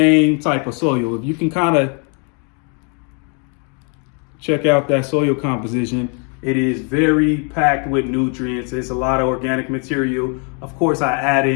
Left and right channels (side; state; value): right; quieter; 37.9 dB